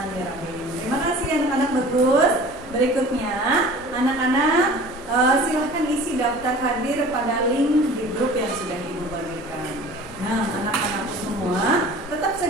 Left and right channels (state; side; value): normal; both; correlation 0.43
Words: Terima kasih anak-anak bagus. Berikutnya, anak-anak silahkan isi daftar hadir pada link di grup yang sudah Ibu bagikan. Nah, anak-anak semua tetap